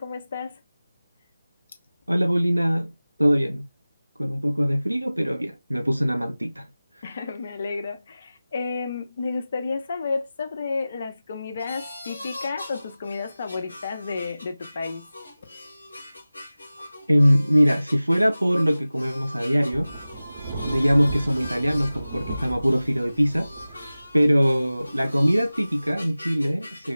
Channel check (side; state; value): both; inverted; correlation -0.97